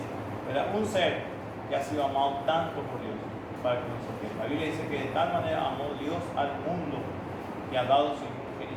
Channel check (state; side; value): identical; both; correlation 1.00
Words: ¿verdad? Un ser que ha sido amado tanto por Dios para que nos sostenga. La Biblia dice que de tal manera amó Dios al mundo que ha dado su Hijo